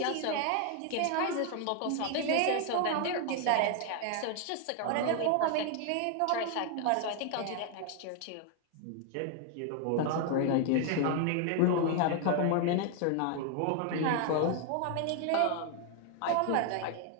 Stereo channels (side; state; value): both; different; correlation 0.00